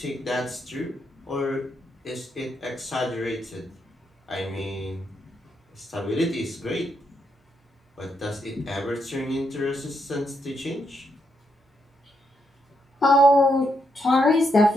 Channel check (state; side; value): normal; both; correlation 0.79